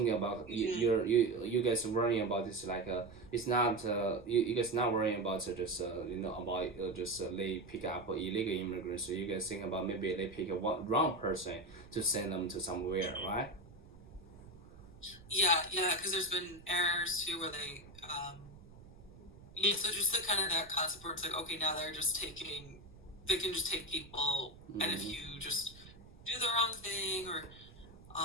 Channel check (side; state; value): right; noise; rumble, 22 dB below the sound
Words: about you guys worrying about this like it's not you guys not worrying about just about just they pick up illegal immigrants. So you guys think about maybe they pick a wrong person to send them to somewhere, right? Yeah, because there's been errors too where they so just the kind of that concept where it's like, okay, now they can just take people, and if you just do the wrong thing or